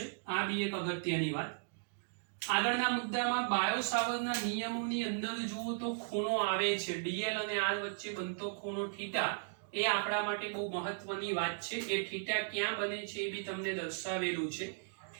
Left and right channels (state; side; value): silent; left; digital silence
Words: આ બી એક અગત્યની વાત. આગળના મુદ્દામાં બાયો-સાવરના નિયમોની અંદર જુઓ તો ખૂણો આવે છે, dl અને r વચ્ચે બનતો ખૂણો θ એ આપણા માટે બહુ મહત્વની વાત છે. એ θ ક્યાં બને છે એ બી તમને દર્શાવેલું છે.